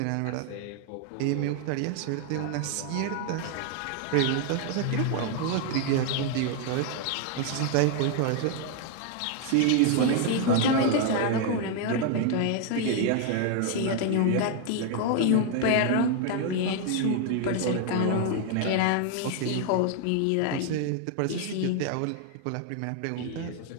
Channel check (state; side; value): different; both; correlation 0.00